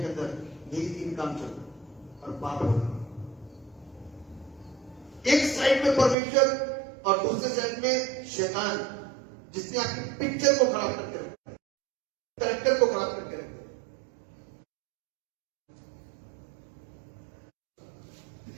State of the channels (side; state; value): left; drops out; at 6.2 s